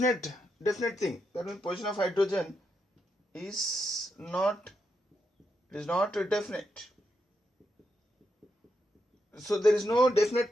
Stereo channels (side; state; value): both; normal; correlation 0.82